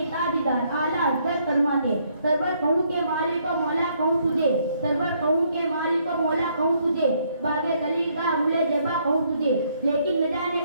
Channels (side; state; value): both; inverted; correlation -0.70